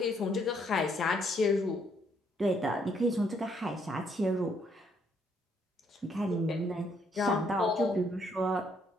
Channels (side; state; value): both; normal; correlation 0.70